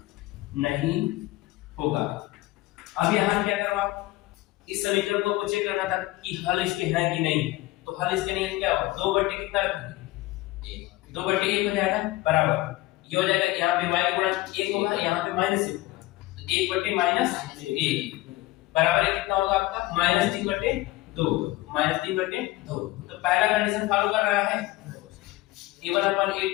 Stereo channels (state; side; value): quieter; right; 18.4 dB